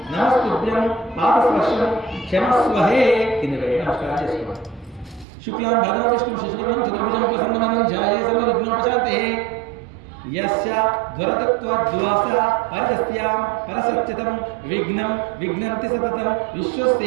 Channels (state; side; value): drops out; left; at 5.2 s